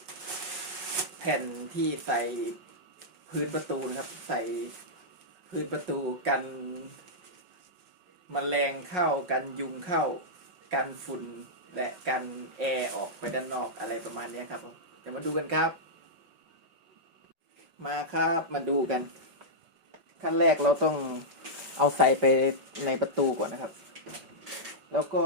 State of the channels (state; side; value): late; left; 5.5 ms